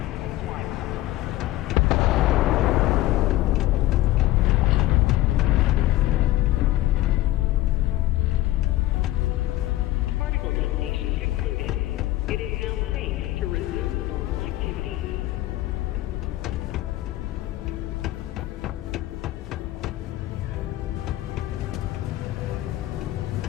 Particle detonation concluded. It is now safe to resume normal activity.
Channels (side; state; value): right; quieter; 16.1 dB